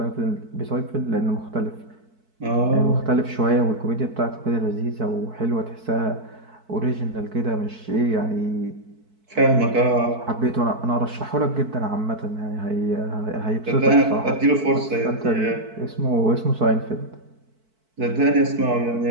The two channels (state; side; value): late; left; 4.5 ms